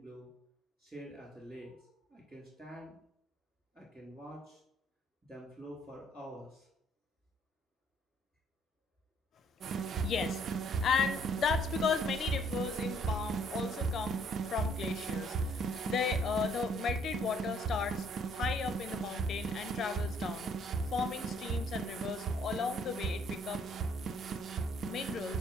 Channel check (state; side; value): normal; both; correlation 0.64